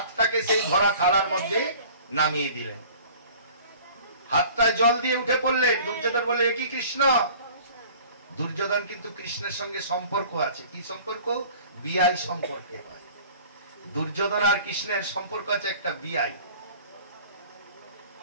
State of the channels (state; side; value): inverted; both; correlation -0.47